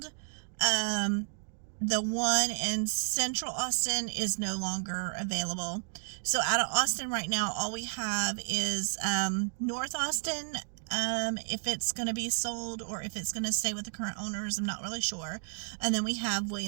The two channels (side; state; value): left; silent; digital silence